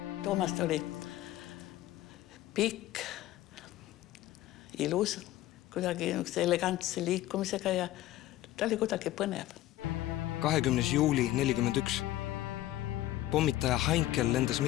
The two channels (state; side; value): quieter; right; 15.1 dB